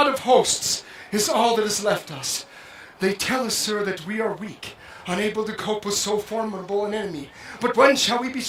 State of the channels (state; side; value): identical; both; correlation 1.00